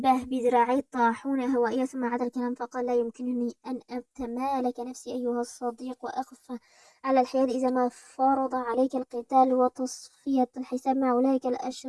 بذراعي الطاحونة هوائية، ثم عاد الكلام فقال: لا يمكنني أن أتمالك نفسي أيها الصديق وأقف على الحياد إذا ما فرض عليك القتال وتصفية الحساب مع أولئك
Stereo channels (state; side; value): identical; both; correlation 1.00